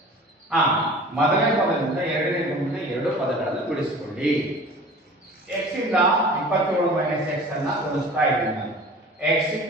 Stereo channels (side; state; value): both; normal; correlation 0.42